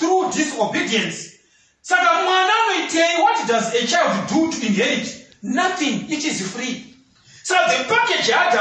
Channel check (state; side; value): identical; both; correlation 1.00